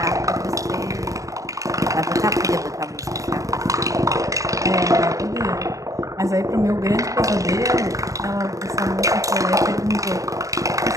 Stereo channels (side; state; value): left; late; 0.16 ms